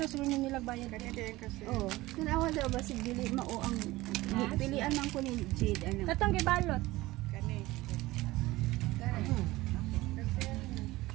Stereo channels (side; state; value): left; quieter; 18.8 dB